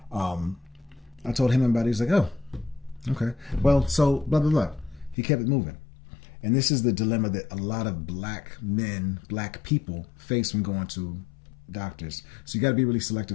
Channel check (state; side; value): drops out; right; at 5.2 s